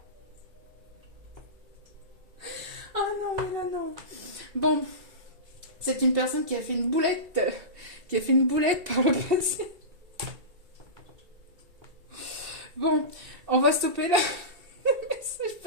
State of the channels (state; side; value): late; left; 2.7 ms